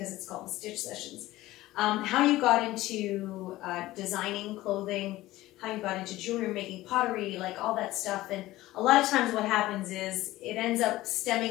it's called the Stitch Sessions. How you got into designing clothing, how you got into jewelry, making pottery, like all that stuff. And a lot of times what happens is it ends up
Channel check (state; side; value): quieter; right; 16.9 dB